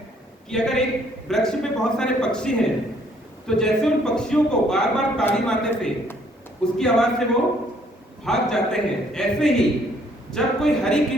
कि अगर एक वृक्ष पे बहुत सारे पक्षी हैं, तो जैसे उन पक्षियों को बार बार ताली मारने से उसकी आवाज से वो भाग जाते हैं, ऐसे ही जब कोई हरि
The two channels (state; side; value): normal; both; correlation 0.64